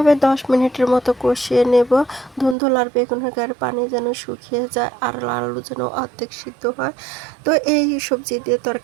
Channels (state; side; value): drops out; left; at 2.6 s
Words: 10 মিনিটের মতো কষিয়ে নেব। ধুন্দুল আর বেগুনের গায়ের পানি যেন শুকিয়ে যায় আর আলু যেন অর্ধেক সিদ্ধ হয়। তো এই সবজি দিয়ে